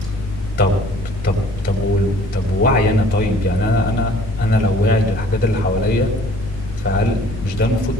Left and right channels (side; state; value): left; noise; rumble, 10 dB below the sound